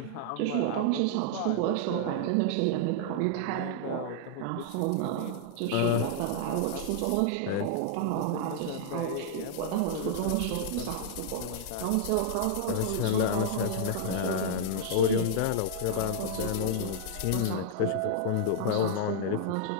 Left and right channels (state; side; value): different; both; correlation -0.01